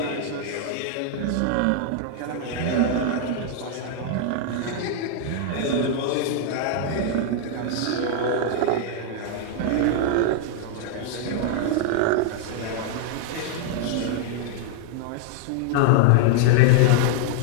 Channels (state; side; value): different; both; correlation 0.00